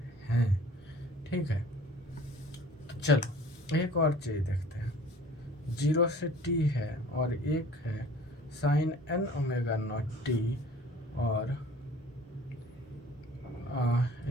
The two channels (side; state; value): both; normal; correlation 0.48